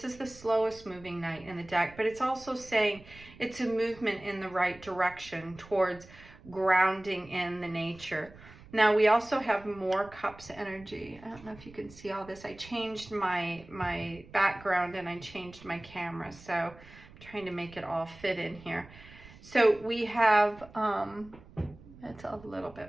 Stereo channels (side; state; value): right; noise; rumble, 21 dB below the sound